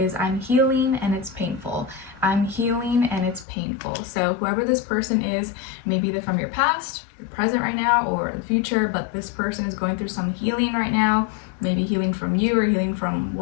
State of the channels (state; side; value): drops out; right; at 3.5 s